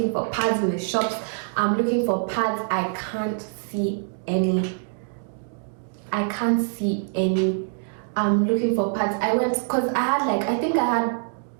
in the shops. I'm looking for pads. I can't see any. I'm looking for pads. I went, because I think I had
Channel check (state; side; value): silent; left; digital silence